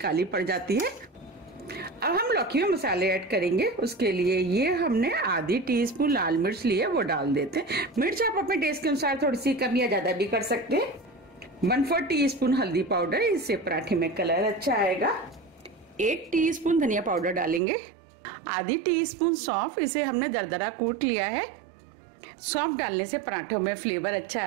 पड़ जाती है। अब हम लौकी में मसाले ऐड करेंगे। उसके लिए ये हमने आधी टीस्पून लाल मिर्च ली है, वो डाल देते हैं। मिर्च आप अपने टेस्ट के अनुसार थोड़ी सी कम या ज्यादा भी कर सकते हैं। 1/4 टीस्पून हल्दी पाउडर, इससे पराठे में कलर अच्छा आएगा। 1 टीस्पून धनिया पाउडर डालेंगे। आधी टीस्पून सौंफ, इसे हमने दरदरा कूट लिया है। सौंफ डालने से पराठों में फ्लेवर अच्छा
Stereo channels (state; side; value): drops out; left; at 17.6 s